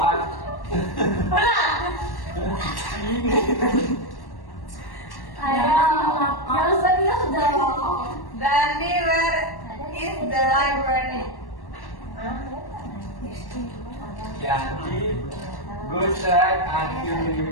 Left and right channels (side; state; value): right; late; 1.1 ms